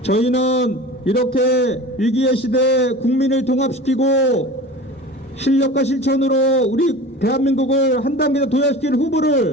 저희는 이렇게 위기의 시대에 국민을 통합시키고 실력과 실천으로 우리 대한민국을 한 단계 더 도약시킬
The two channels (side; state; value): both; normal; correlation 0.36